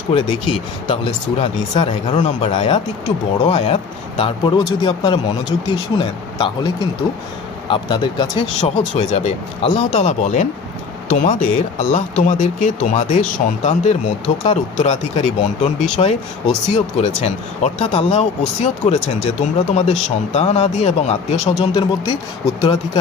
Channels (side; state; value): right; quieter; 5.2 dB